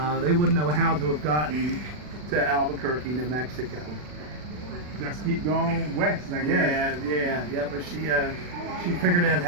they wouldn't know how to have gotten to Albuquerque, New Mexico. Just keep going west, I guess. Yeah. But she figured out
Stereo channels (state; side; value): late; left; 40 ms